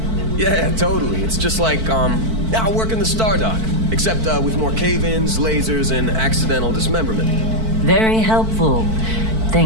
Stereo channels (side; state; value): left; late; 4.5 ms